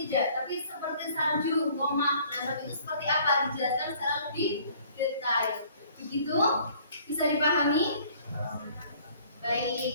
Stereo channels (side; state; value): both; inverted; correlation -0.56